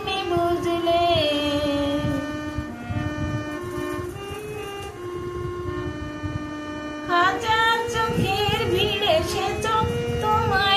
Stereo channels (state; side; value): identical; both; correlation 1.00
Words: বুঝলে। হাজার চোখের ভিড়ে সে চোখ